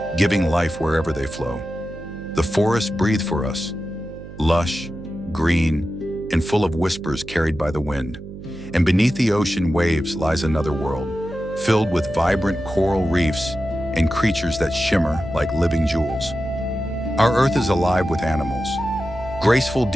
giving life wherever they flow. The forests breathe for us, lush, green, and full of whispers carried by the wind. And beneath the ocean waves lies another world, filled with vibrant coral reefs and creatures that shimmer like living jewels. Our Earth is alive with animals. Graceful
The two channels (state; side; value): noise; right; hum, 14 dB below the sound